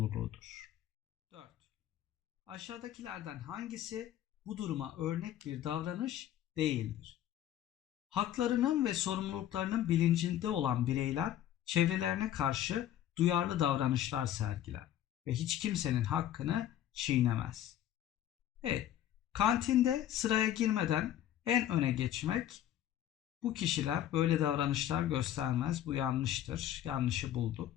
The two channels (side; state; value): right; quieter; 11.7 dB